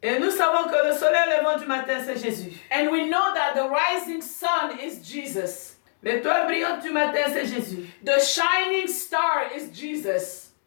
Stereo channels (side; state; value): right; silent; digital silence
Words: Et nous savons que le soleil levant du matin, c'est Jésus. And we know that the rising sun is Jesus. L'étoile brillante du matin, c'est Jésus. The shining star is Jesus.